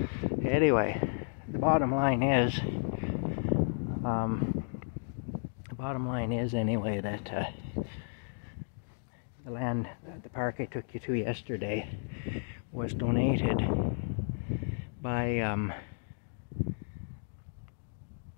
anyway, the bottom line is, anyway, that the land, the park I took you to yesterday, was donated by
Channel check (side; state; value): right; silent; digital silence